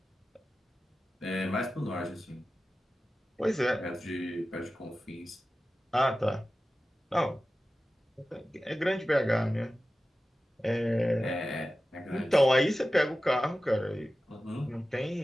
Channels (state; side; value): normal; both; correlation 0.95